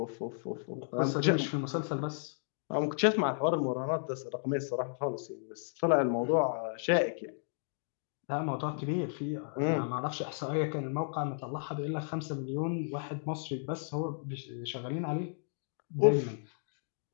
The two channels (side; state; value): right; silent; digital silence